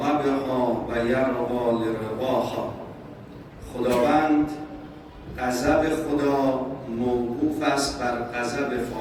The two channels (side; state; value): both; identical; correlation 1.00